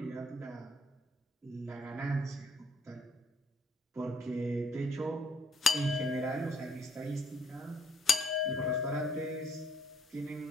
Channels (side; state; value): both; normal; correlation 0.65